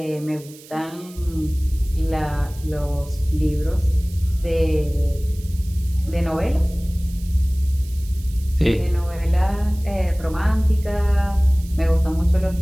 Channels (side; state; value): right; noise; hiss, 21 dB below the sound